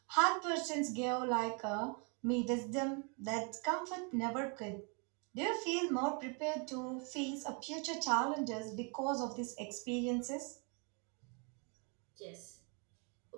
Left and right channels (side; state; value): left; quieter; 35.5 dB